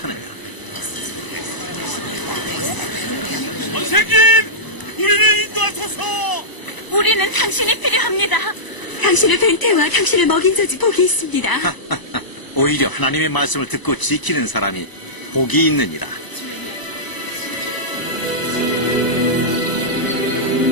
선생님, 우리를 인도하소서. 우리는 당신이 필요합니다. 당신을 뵌 태와 당신을 먹인 저지 복이 있습니다. 오히려 하나님의 말씀을 듣고 지키는 사람이 복이 있느니라.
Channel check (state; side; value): late; right; 1.0 ms